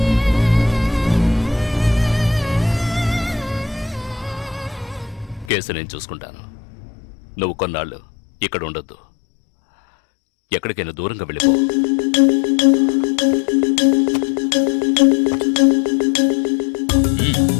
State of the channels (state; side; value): drops out; right; at 5.5 s